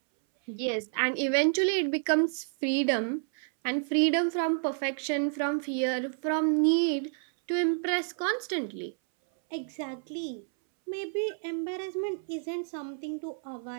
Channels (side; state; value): left; silent; 58 dB below the other